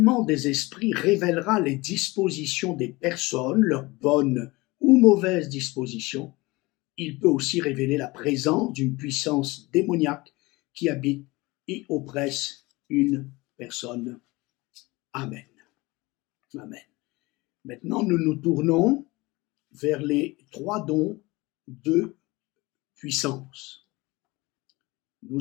des esprits révélera les dispositions des personnes, leurs bonnes ou mauvaises dispositions. Il peut aussi révéler la présence d'une puissance démoniaque qui habite et oppresse une personne. Amen. Amen. Maintenant, nous nous tournons vers les trois dons de puissance.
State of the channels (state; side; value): quieter; right; 22.5 dB